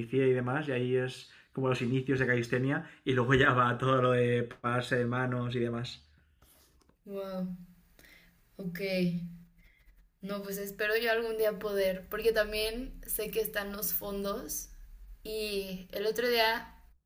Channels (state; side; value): identical; both; correlation 1.00